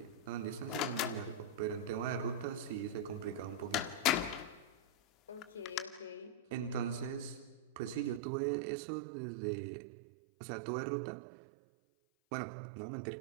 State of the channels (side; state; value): left; drops out; at 8.2 s